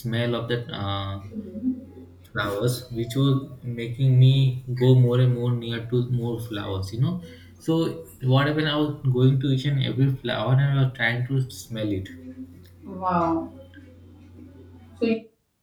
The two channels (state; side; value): identical; both; correlation 1.00